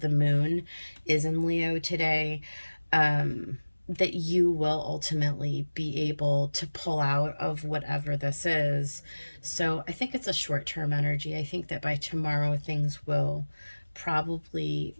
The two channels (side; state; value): both; inverted; correlation -1.00